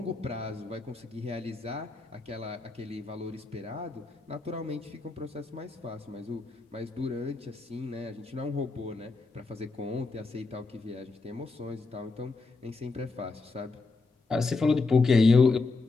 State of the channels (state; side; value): quieter; right; 3.8 dB